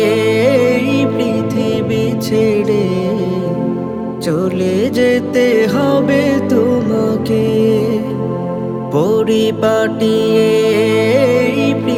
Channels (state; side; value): identical; both; correlation 1.00